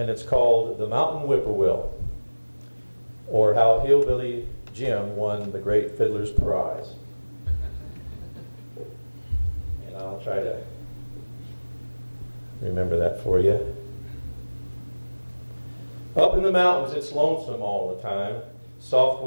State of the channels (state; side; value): inverted; both; correlation -1.00